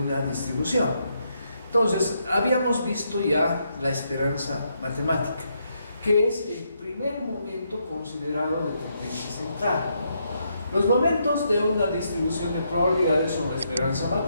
distribución. Entonces, habíamos visto ya la esperanza matemática, que es el primer momento considerado de tendencia central. Los momentos de una distribución de probabilidades son la esperanza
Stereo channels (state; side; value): inverted; both; correlation -0.78